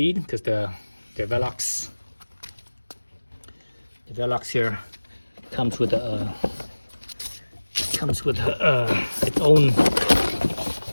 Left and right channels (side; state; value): both; inverted; correlation -1.00